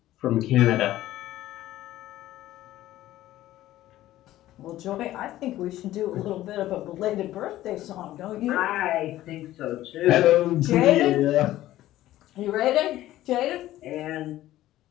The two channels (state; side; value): quieter; right; 14.7 dB